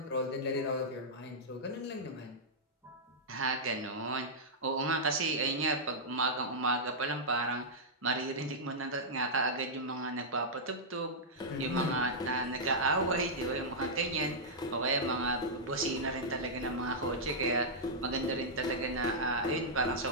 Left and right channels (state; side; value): normal; both; correlation -0.09